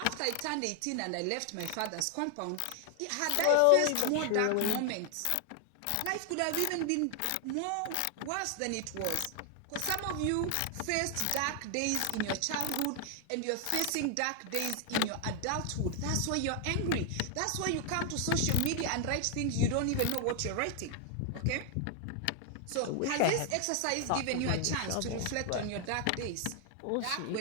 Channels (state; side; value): different; both; correlation 0.00